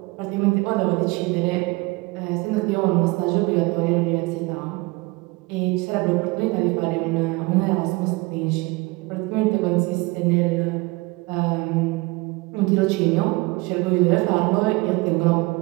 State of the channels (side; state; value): left; quieter; 24.2 dB